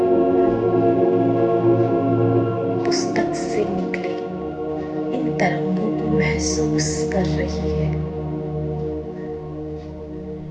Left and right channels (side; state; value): both; identical; correlation 1.00